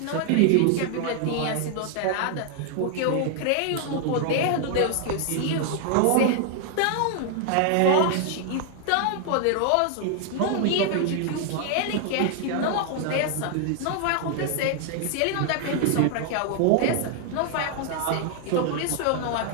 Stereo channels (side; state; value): both; different; correlation 0.00